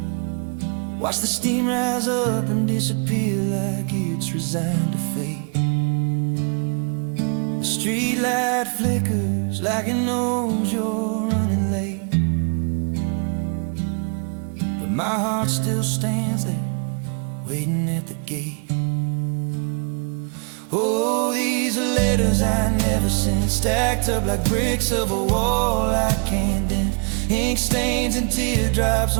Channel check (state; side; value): quieter; left; 39.9 dB